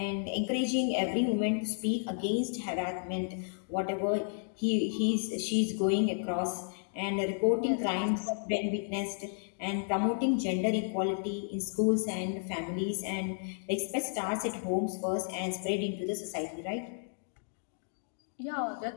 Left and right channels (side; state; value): right; silent; digital silence